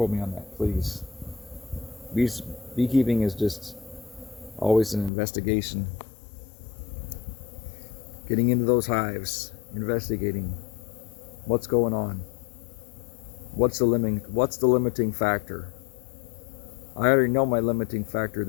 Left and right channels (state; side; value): drops out; right; at 5.1 s